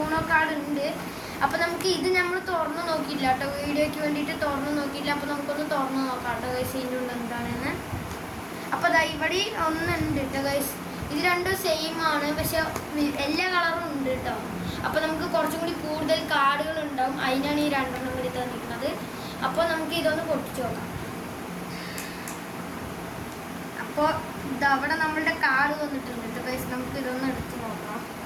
കാർഡ് ഉണ്ട്. അപ്പോൾ നമുക്ക് ഇത് നമ്മൾ തുറന്ന് നോക്കിയില്ല കേട്ടോ, വീഡിയോയ്ക്ക് വേണ്ടിയിട്ട് തുറന്ന് നോക്കിയില്ല. അപ്പോൾ നമുക്കൊന്ന് തുറന്ന് നോക്കാം കേട്ടോ ഗൈസ് ഇതിൻ്റെ ഉള്ളിൽ എന്താണെന്ന്. അപ്പോൾ ദാ ഇവിടെ ഒന്നുണ്ട് കേട്ടോ ഗൈസ്. ഇത് രണ്ടും സെയിം ആണ്, പക്ഷെ എല്ലാ കളറും ഉണ്ട് കേട്ടോ. അപ്പോൾ നമുക്ക് കുറച്ചും കൂടി കൂടുതൽ കാർഡുകൾ ഉണ്ടാവും, അതിനാണ് ഈ 2 എണ്ണം കൂടി തന്നിരിക്കുന്നത്. അപ്പോൾ നമുക്ക് ഇതൊന്ന് പൊട്ടിച്ച് നോക്കാം. അപ്പോൾ ഇതവിടെ നമ്മളുടെ കാർഡ് വന്നിട്ടുണ്ട് കേട്ടോ ഗൈസ്. നമുക്ക് ഇതൊന്ന് എടുത്ത് നോക്കാം.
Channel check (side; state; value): both; identical; correlation 1.00